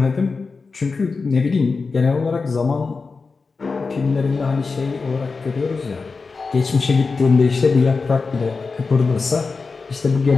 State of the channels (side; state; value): right; quieter; 4.4 dB